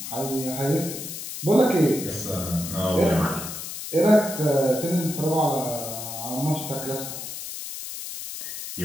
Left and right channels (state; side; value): noise; left; hiss, 8 dB below the sound